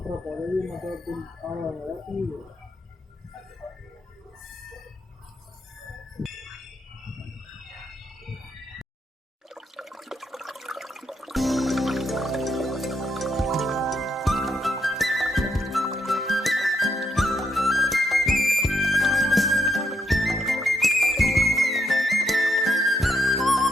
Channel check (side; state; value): both; normal; correlation 0.78